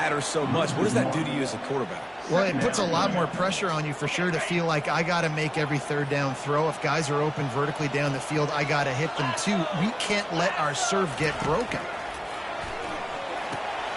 so much. What does that do to you as a quarterback? Well, it puts a lot more pressure on you for sure to feel like I got to make every 3rd down throw. If guys are open vertically down the field, I got to hit them too. We can't let our serve get broken.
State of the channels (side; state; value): both; identical; correlation 1.00